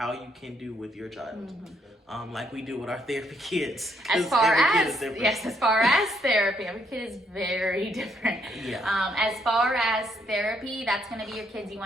you can do with your child, like we do with our therapy kids. As far as therapy, every kid is very different. Yeah. As far as therapy, that's gonna be your kids you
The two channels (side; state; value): both; normal; correlation 0.72